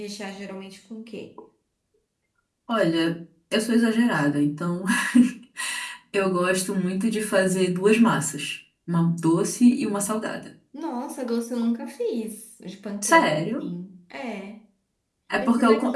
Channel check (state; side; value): identical; both; correlation 1.00